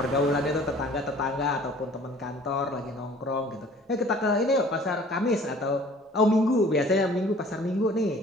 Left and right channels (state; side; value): normal; both; correlation 0.51